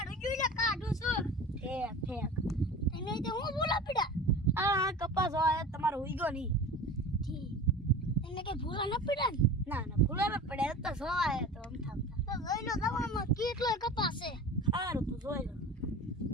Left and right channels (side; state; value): both; normal; correlation 0.35